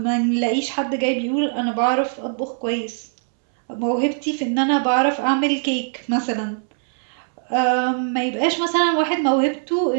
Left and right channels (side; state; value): left; silent; 65 dB below the other